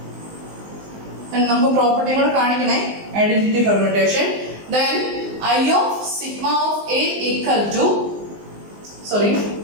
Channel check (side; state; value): left; late; 19 ms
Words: നമുക്ക് പ്രോപ്പർട്ടികൾ കാണിക്കണേ identity permutation. then I of sigma of a equal to